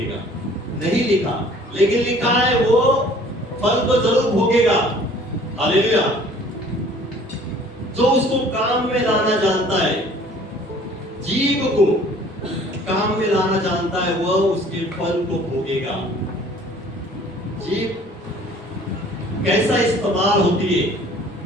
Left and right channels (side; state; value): both; normal; correlation 0.52